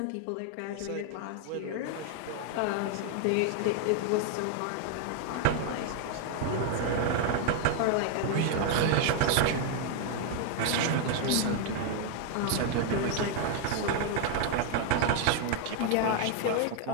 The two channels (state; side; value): different; both; correlation 0.00